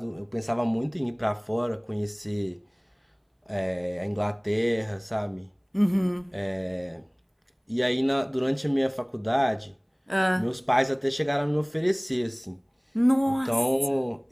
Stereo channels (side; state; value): both; identical; correlation 1.00